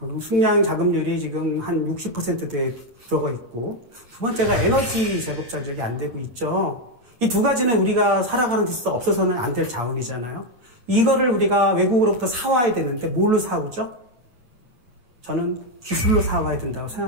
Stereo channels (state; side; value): late; left; 8.4 ms